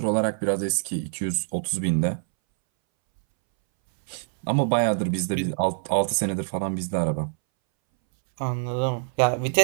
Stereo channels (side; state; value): left; silent; 62 dB below the other